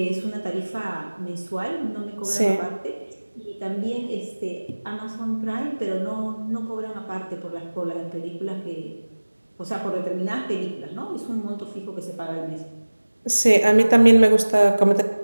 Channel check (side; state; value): both; inverted; correlation -1.00